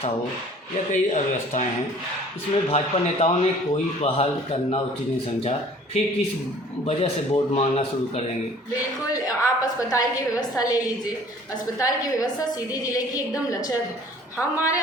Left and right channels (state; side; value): normal; both; correlation 0.51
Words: हो, या कई अव्यवस्थाएं हैं। इसमें भाजपा नेताओं ने कोई पहल करना उचित नहीं समझा, फिर किस वजह से वोट मांगना शुरू करेंगे? बिल्कुल, आप अस्पताल की व्यवस्था ले लीजिए। अस्पताल की व्यवस्था सीधी जिले की एकदम लचर है। हमारे